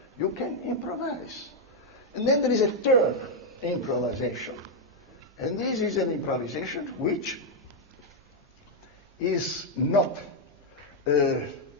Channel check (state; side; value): normal; both; correlation 0.00